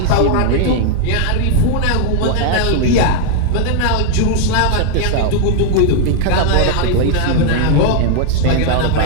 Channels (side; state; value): both; different; correlation 0.00